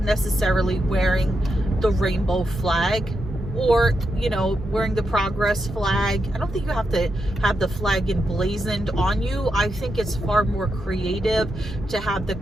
necessarily wearing the rainbow flag, or, you know, wearing the Progress flag. I don't think you have to have the flag emblazoned on you. I think it's far more creative to have the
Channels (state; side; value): normal; both; correlation 0.85